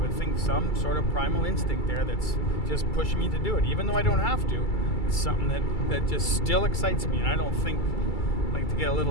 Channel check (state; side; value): late; right; 2.3 ms